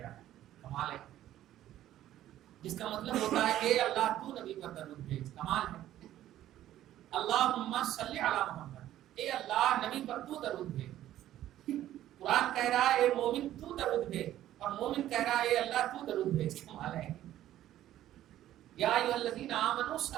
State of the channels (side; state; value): left; quieter; 12.9 dB